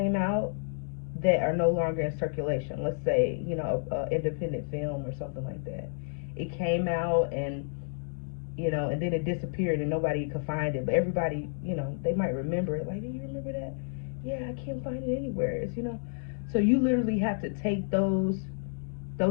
out that are no longer in circulation. Let's say, independent film or something like that. It came out and then it disappeared and nobody could find it. But everybody, they might remember it. Like, do you remember that? Yeah, I can't find it anywhere. So you literally have to take those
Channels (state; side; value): silent; right; digital silence